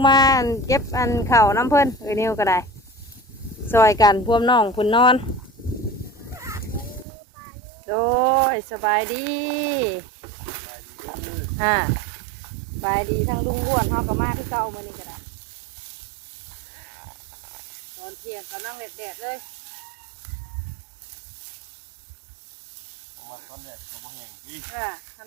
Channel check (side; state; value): left; drops out; at 7.1 s